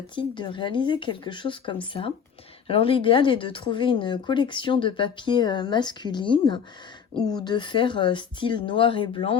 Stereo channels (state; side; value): quieter; right; 7.2 dB